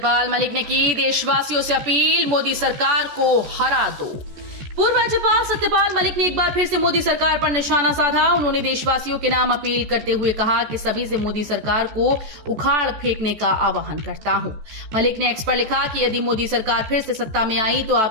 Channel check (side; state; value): left; late; 14 ms